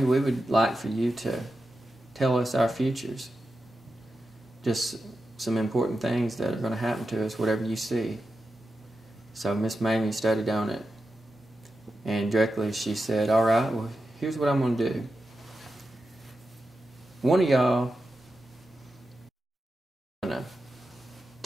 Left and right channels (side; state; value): both; normal; correlation 0.90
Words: we would like for you to tell us our futures. Just some important things that are going to happen to us, whatever you see." So Miss Mamie studied on it, and directly she said, "All right, well, here's what I'm going to do. One of y'all is going to